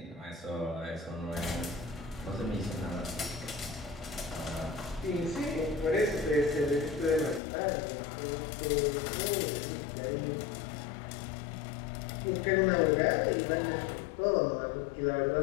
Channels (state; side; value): drops out; right; at 7.4 s